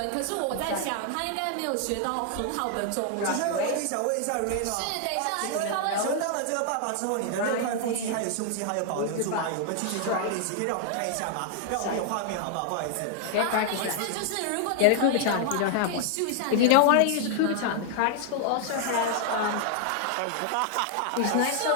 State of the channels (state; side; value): different; both; correlation 0.00